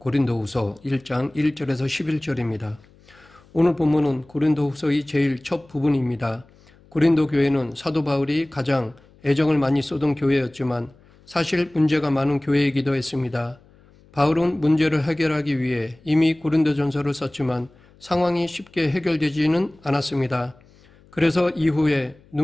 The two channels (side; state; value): left; noise; hum, 28 dB below the sound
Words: 1장 1절에서 11절입니다. 오늘 본문은 고린도후서의 제일 첫 부분입니다. 고린도 교회는 사도 바울이 가장 애정을 많이 쏟은 교회였지만 사실 문제가 많은 교회이기도 했습니다. 바울은 문제를 해결하기 위해 이미 고린도전서를 썼지만 상황이 쉽게 해결되지는 않았습니다. 그래서 이후에